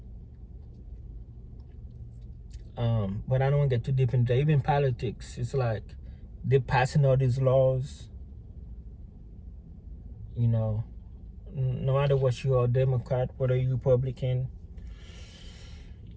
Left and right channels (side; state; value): both; identical; correlation 1.00